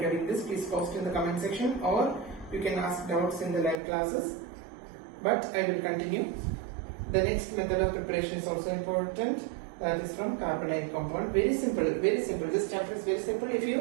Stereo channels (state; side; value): drops out; left; at 3.8 s